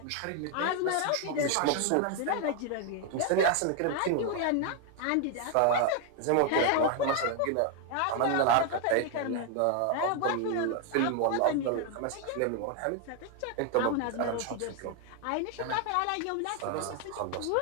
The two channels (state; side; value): different; both; correlation 0.00